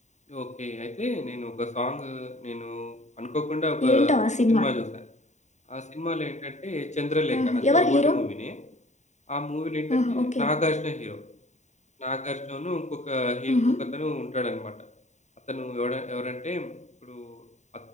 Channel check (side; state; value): right; late; 0.34 ms